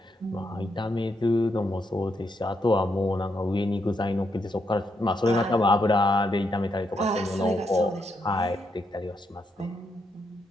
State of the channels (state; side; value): normal; both; correlation 0.80